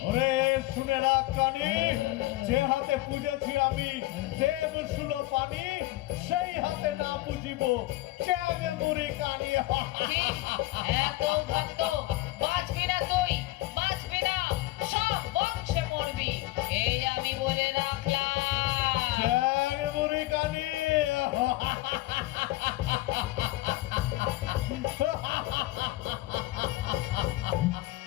ওরে শুনে রাখ কানি, যে হাতে পুজেছি আমি দেব শুলো পানি, সেই হাতে না পুজিব চ্যাংমুড়ি কানি। এত ভক্ত বাঁচবি না, তুই বাঁচবি না, সব বংশে মরবি, এই আমি বলে রাখলাম। চ্যাংমুড়ি কানি।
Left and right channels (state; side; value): quieter; right; 18.2 dB